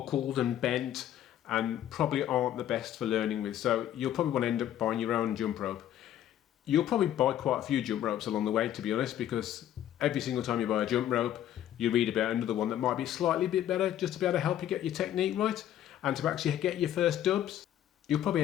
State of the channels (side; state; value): right; quieter; 11.5 dB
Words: and bent, and probably aren't the best for learning with. So you'll probably want to end up buying your own jump rope. You'll probably buy quite a few jump ropes along the way, to be honest, because every single time you buy a jump rope, you read about another one that might be slightly bit better, just to be able to help you get your technique right and to actually get your first dubs. You'll probably